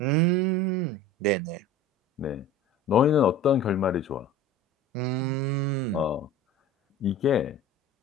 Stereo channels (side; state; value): both; normal; correlation 0.38